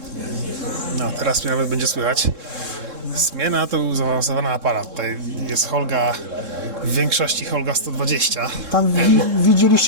No, teraz mnie nawet będzie słychać. Smiena to był zaawansowany aparat. Tutaj jest Holga, w większości Holga 120. Tam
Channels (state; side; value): late; left; 3.7 ms